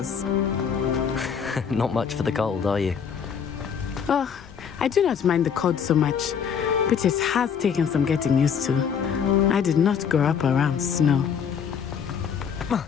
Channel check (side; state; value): right; quieter; 7.2 dB